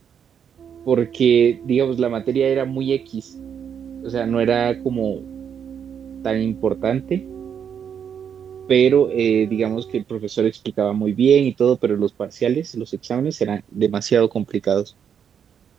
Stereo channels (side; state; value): left; quieter; 7.9 dB